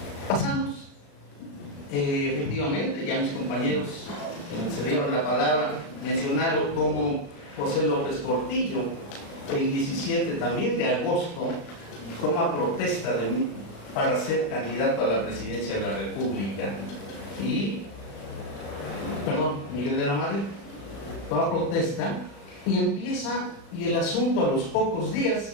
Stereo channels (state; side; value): late; right; 36 ms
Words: Pasamos, efectivamente, ya mis compañeros que me cedieron la palabra mencionaron como José López Portillo, el 17 también de agosto, toma protesta de mí para ser candidato a la presidencia de la República. Miguel de la Madrid toma protesta y empieza, y el asunto a los pocos días